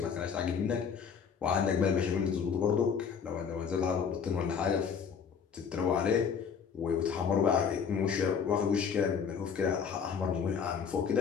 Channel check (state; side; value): quieter; right; 6.6 dB